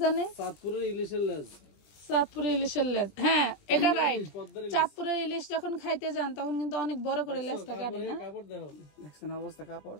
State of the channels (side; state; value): right; late; 20 ms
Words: জানে? চাঁদপুরের ইলিশের লেজ, চাঁদপুরের ইলিশের লেজ, হ্যাঁ এটা রাইট। চাঁদপুরের ইলিশ যখন খাইতে যান তখন কিন্তু অনেক বড় করে লেজটা কাটে না? কাপড় দেখো, দেখছেন অবস্থা, কাপড়,